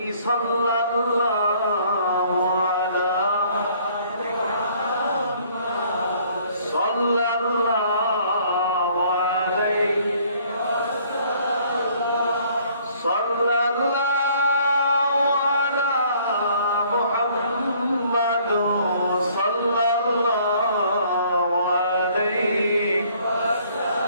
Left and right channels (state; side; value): inverted; both; correlation -0.60